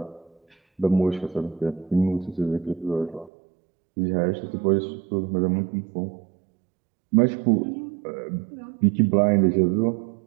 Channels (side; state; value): left; drops out; at 3.3 s